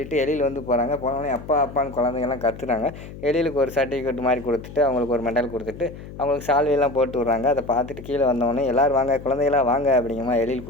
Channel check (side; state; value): left; noise; hum, 14 dB below the sound